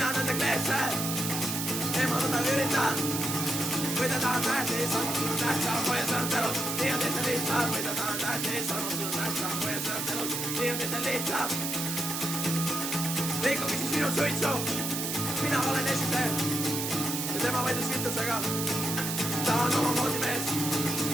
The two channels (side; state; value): right; noise; hiss, 2 dB below the sound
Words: nende kleepse, eemaldada üritan. Või ta tahan tähtis, armastus tähtsam, hoia sõnad elus, nii on teisel lihtsam. Või ta tahan tähtis, armastus tähtsam, hoia sõnad elus, nii on teisel lihtsam. Rikkuge siis minu suitsu, mina olen esise ja tema vaidlus kütusega. Ta on oma moodi mees,